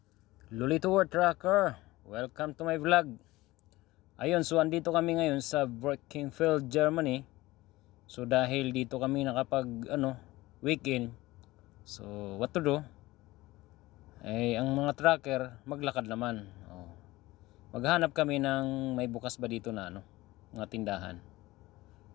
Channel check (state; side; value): quieter; right; 19.0 dB